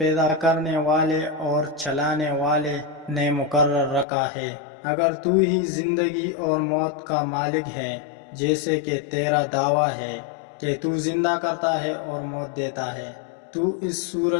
کرنے والے اور چلانے والے نے مقرر رکھا ہے۔ اگر تو ہی زندگی اور موت کا مالک ہے جیسے کہ تیرا دعویٰ ہے کہ تو زندہ کرتا ہے اور موت دیتا ہے، تو اس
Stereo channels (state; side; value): drops out; right; at 4.0 s